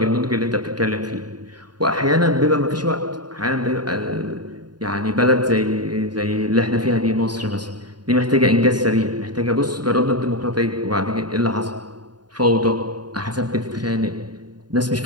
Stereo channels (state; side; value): late; left; 0.70 ms